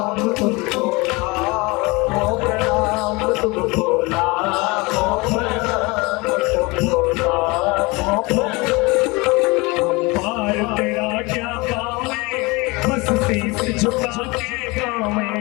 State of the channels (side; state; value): right; quieter; 25.1 dB